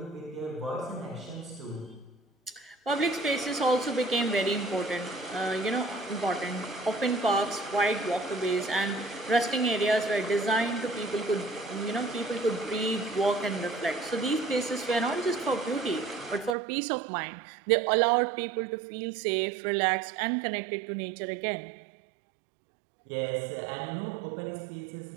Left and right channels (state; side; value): drops out; left; at 16.6 s